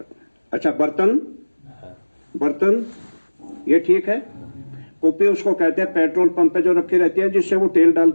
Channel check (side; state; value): both; inverted; correlation -1.00